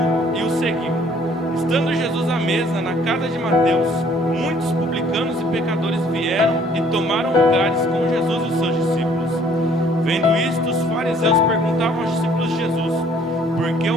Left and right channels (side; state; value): both; normal; correlation 0.59